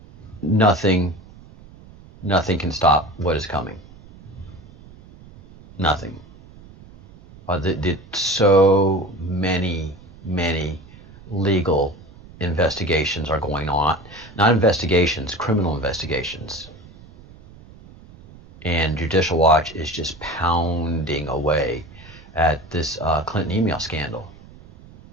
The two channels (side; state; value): right; noise; rumble, 21 dB below the sound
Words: nothing can stop what is coming. Nothing. So many legal investigations are going on. Not investigations, criminal investigations. And Judicial Watch is just pounding away at this Clinton email scandal